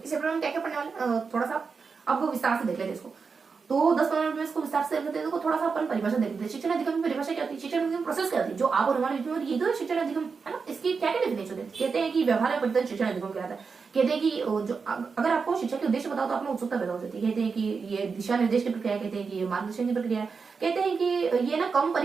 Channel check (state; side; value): quieter; left; 5.2 dB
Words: इस चैप्टर में क्या क्या पढ़ने वाले, थोड़ा सा अब विस्तार से देख लेते हैं इसको। तो 10-15 मिनट में इसको विस्तार से देख लेते हैं। तो थोड़ा सा अपन परिभाषा देख लेते हैं। शिक्षण अधिगम की परिभाषा क्या होती है, शिक्षण अधिगम प्रोसेस क्या होती है, जो आप और हमारे बीच में ये तो शिक्षण अधिगम है ना, इसकी क्या क्या डेफिनेशन है। कहते हैं कि व्यवहार में परिवर्तन शिक्षण अधिगम कहलाता है। कहते हैं कि जो अगर आपको शिक्षा के उद्देश्य बताओ तो आप में उत्सुकता पैदा हो जाती है। कहते हैं कि ये दिशा निर्देश की प्रक्रिया, कहते हैं कि ये मार्गदर्शन की प्रक्रिया है, कहते हैं कि ये ना कम